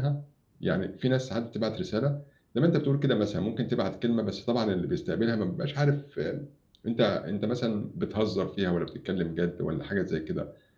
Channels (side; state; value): both; identical; correlation 1.00